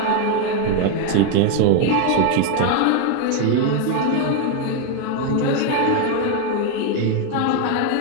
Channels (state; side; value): different; both; correlation 0.01